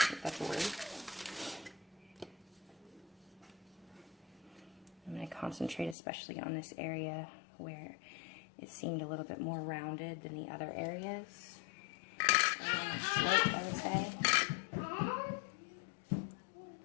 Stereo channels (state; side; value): drops out; right; at 6.0 s